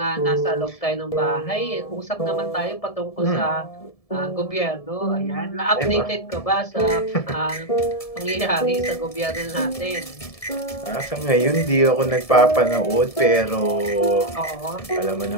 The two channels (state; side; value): late; right; 1.7 ms